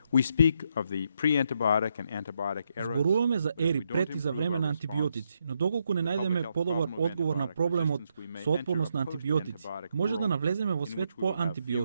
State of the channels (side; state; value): both; inverted; correlation -0.79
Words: Зборуваме за ери пред и за време на антибиотици, но доколку не најдеме подобар одговор на проблемот со отпорност на антибиотици, може да навлеземе во свет по